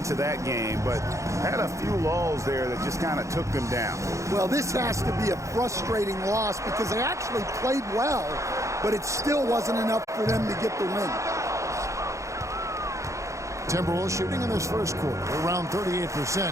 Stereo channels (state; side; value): late; left; 0.15 ms